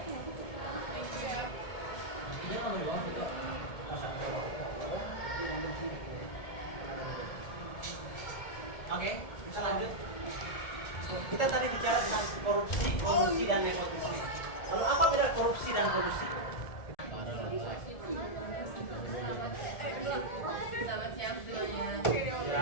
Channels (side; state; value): right; late; 1.7 ms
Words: Oke, bisa lanjut. Kita tadi bicara tentang korupsi dan nepotisme. Lalu apa beda korupsi dan kolusi? Selamat siang semuanya.